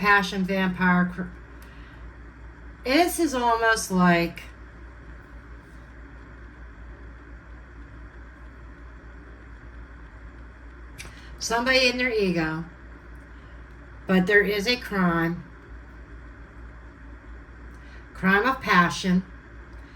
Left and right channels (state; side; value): identical; both; correlation 1.00